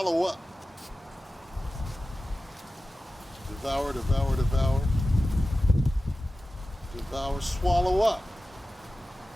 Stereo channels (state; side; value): normal; both; correlation 0.95